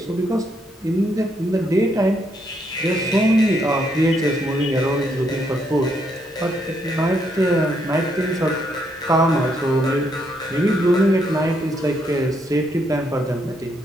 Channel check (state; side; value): normal; both; correlation 0.75